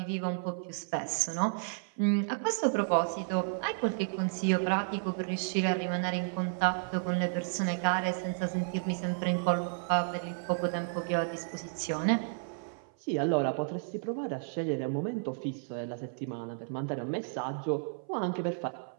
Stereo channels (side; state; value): left; silent; 56 dB below the other